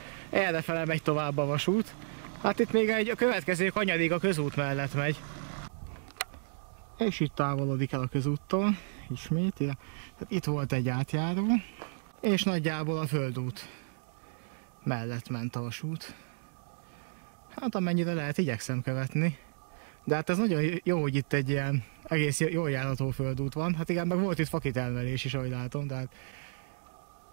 errefele megy tovább a vasút. Hát itt még a következő kanyarig a közút mellett megy. És itt távolodik el a közúttól, ismét. Tehát itt volt egy átjáró, és nagyjából a földút mellett ment a vasút. Hát amennyire lehet, igyekszem követni. De hát ez nagyon jó, hogy itt egy ilyen egész jól járható földút van. Hát igen, meg volt itt fakitermelés is, ahogy látom,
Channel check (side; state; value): left; silent; digital silence